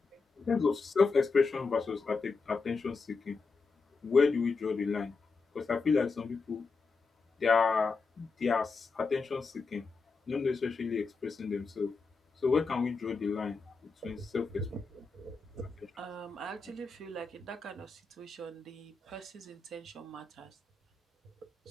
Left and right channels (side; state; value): right; quieter; 4.4 dB